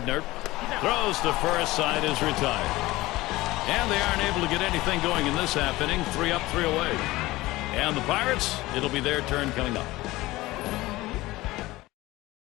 throws to first. Side is retired. And they aren't able to get anything going in this half inning. 3 up, 3 away. And the Pirates, it'll be their turn coming up.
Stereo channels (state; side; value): quieter; right; 18.9 dB